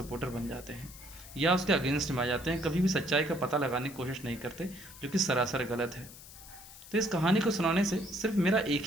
बन जाते हैं या उसके अगेंस्ट में आ जाते हैं। कभी भी सच्चाई का पता लगाने की कोशिश नहीं करते, जो कि सरासर गलत है। तो इस कहानी को सुनाने से सिर्फ मेरा एक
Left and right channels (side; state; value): left; noise; hiss, 17 dB below the sound